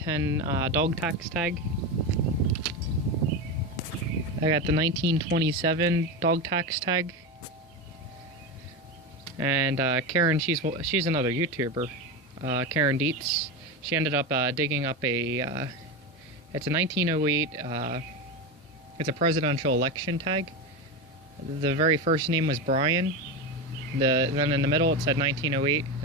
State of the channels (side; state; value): both; normal; correlation 0.18